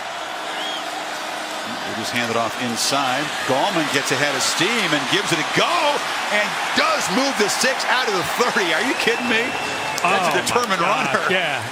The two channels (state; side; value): identical; both; correlation 1.00